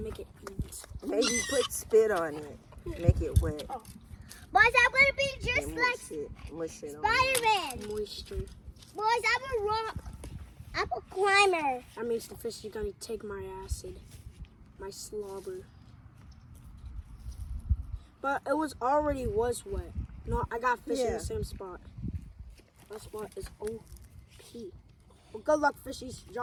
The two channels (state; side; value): identical; both; correlation 1.00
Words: it eat. Maybe put spit on it. Make it wet. Boys, I'm gonna be just And like mush it on. Spider-Man. Moisture. Boys, I'm a climber. That means the fish is gonna take my acid, my slobber. But it was wet. No, I got fish in Yeah. the same spot. That spot is OP. Well, good luck, fishies.